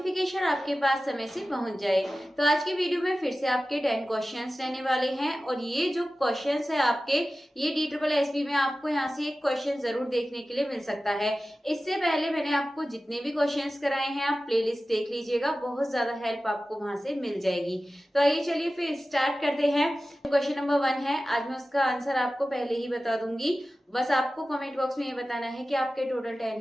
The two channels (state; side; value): normal; both; correlation 0.95